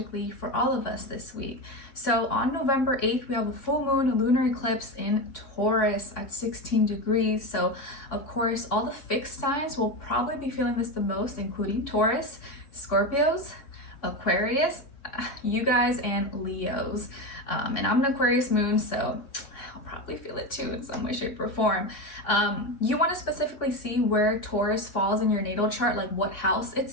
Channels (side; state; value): right; late; 3.5 ms